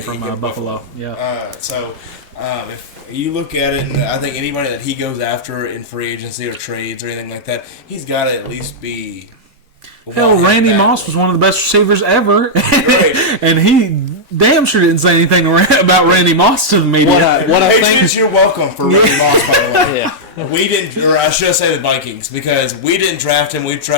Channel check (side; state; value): both; normal; correlation -0.07